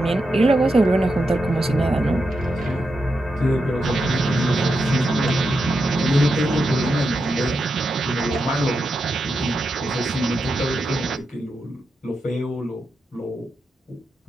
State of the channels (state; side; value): normal; both; correlation 0.86